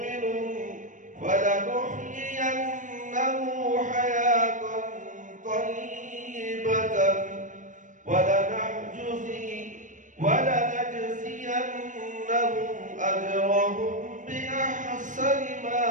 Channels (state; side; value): late; left; 0.37 ms